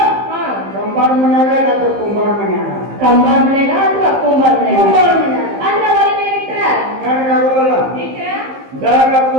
ಹಾ ಕಂಬಾರ ಮನ್ಯಾಗ ಅಥವಾ ಕುಂಬಾರ ಮನ್ಯಾಗ ಕಂಬಾರ ಮನೆಗ ಅಥವಾ ಕುಂಬಾರ ಮನೆಗ ಕುಂಬಾರ ಮನ್ಯಾಗ ಅಂದ್ರೆ ಒಲೆ ಮೇಲೆ ಇಟ್ರ ಕಣಗಾಗೋಲ್ಲ ಇಟ್ರ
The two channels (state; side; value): late; left; 15 ms